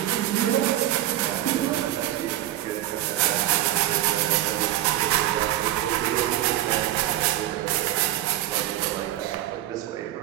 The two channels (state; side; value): quieter; left; 13.8 dB